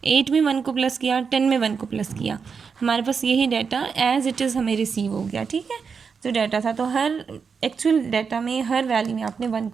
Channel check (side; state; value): left; quieter; 5.8 dB